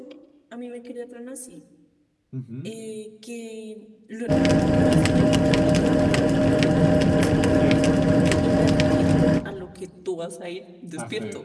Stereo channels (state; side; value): identical; both; correlation 1.00